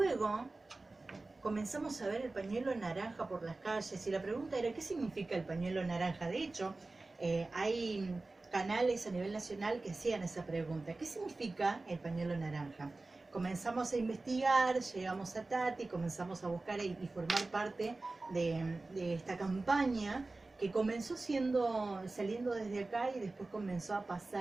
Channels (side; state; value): left; quieter; 3.3 dB